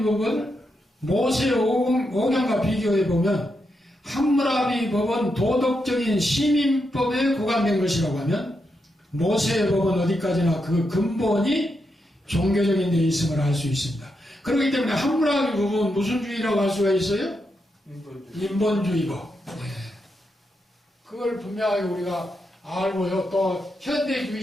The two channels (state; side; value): normal; both; correlation 0.84